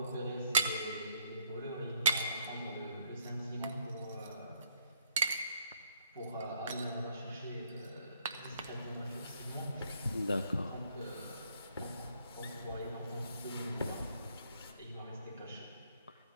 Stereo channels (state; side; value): inverted; both; correlation -0.67